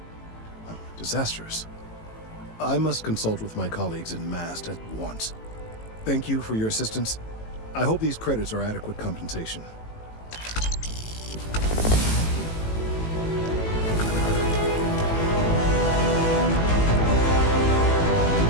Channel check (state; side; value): late; right; 18 ms